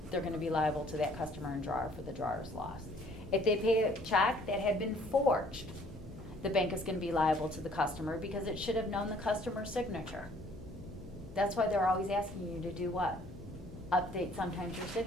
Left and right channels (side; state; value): left; noise; hum, 19 dB below the sound